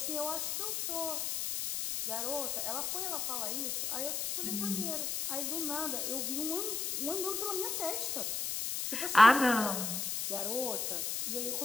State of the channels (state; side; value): noise; left; hiss, 1 dB below the sound